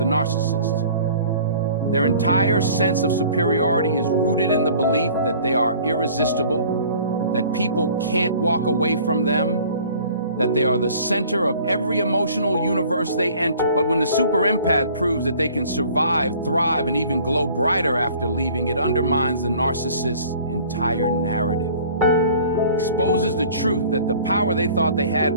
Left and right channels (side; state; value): both; inverted; correlation -0.50